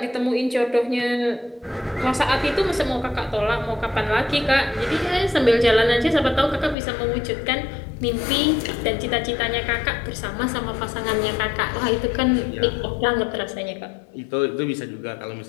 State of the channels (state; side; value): drops out; right; at 6.8 s